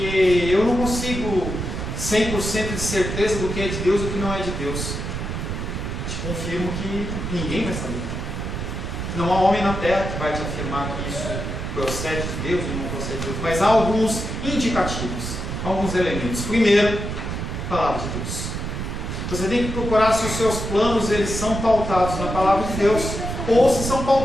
eu não consigo 100% de certeza do que é de Deus e do que não é de Deus. Te confirmo que ninguém vai saber. Não há homem na terra que vai te afirmar que isso procede de Deus ou não procede de Deus. Mas há alguns indicativos, alguns elementos. Primeiro, palavra de Deus. Você tem que procurar se os seus planos eles são pautados na palavra de Deus ou se são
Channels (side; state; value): right; noise; rumble, 4 dB below the sound